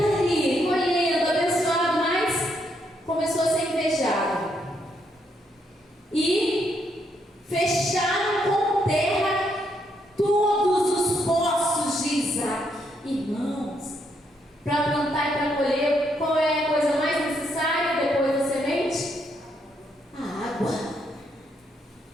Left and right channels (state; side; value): normal; both; correlation 0.76